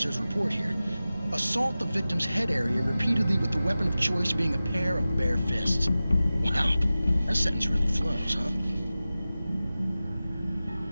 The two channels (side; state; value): both; inverted; correlation -0.96